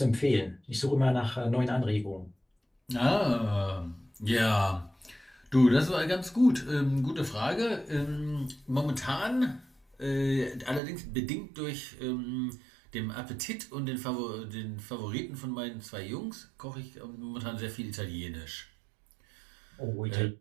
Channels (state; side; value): drops out; left; at 10.8 s